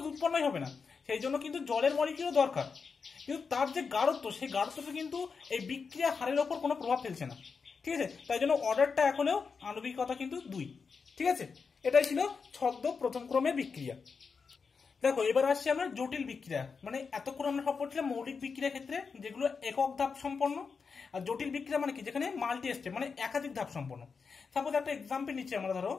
উৎপন্নই হবে না, সেই জন্য কিন্তু জলের মলিকুলও দরকার, কিন্তু তার যে গাঢ়ত্ব সেই গাঢ়ত্বটা কিন্তু এই বিক্রিয়া হারের ওপর কোনো প্রভাব ফেলছে না, ঠিক আছে, তাই জন্য অর্ডারটা এখনো আণবিকতা কিন্তু 2, ঠিক আছে। এটাই ছিল ছদ্ম প্রথম ক্রমের বিক্রিয়া। দেখো এবার আসছি আমরা জটিল বিক্রিয়া, মানে এতক্ষণ আমরা সব পড়ছিলাম মৌলিক বিক্রিয়ার ক্ষেত্রে যেগুলো একক ধাপ সম্পন্ন, আর জটিল বিক্রিয়া মানে কি যেখানে মাল্টি স্টেপ মানে একাধিক ধাপ সম্পন্ন। সাপোজ একটা এক্সাম্পল নিচ্ছি আমরা, ধরো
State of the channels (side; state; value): right; quieter; 5.3 dB